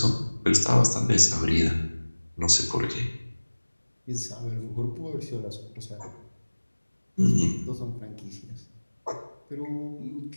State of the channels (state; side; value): inverted; both; correlation -1.00